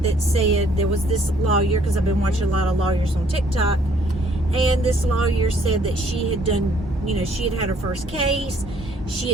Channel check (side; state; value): both; normal; correlation 0.63